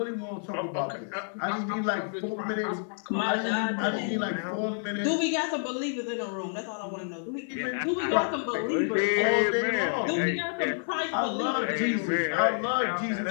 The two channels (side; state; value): right; silent; 59 dB below the other